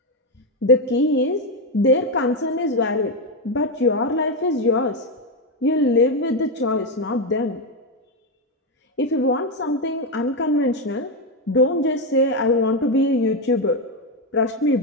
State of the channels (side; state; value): both; normal; correlation 0.08